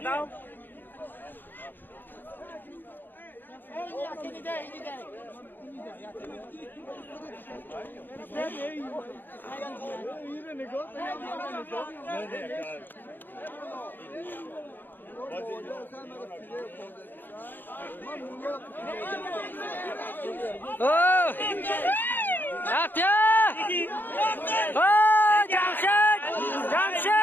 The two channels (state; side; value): late; right; 0.092 ms